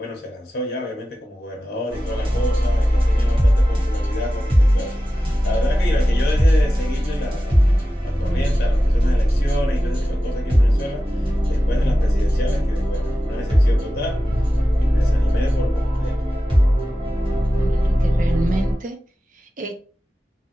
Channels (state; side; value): normal; both; correlation 0.94